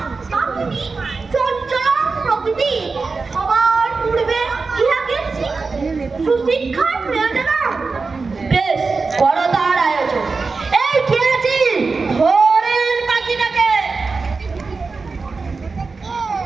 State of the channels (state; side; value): quieter; left; 4.3 dB